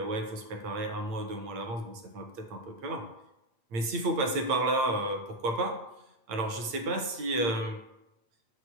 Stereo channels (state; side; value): late; left; 8.8 ms